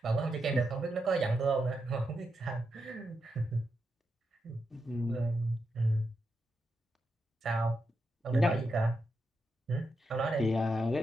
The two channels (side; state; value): both; normal; correlation 0.86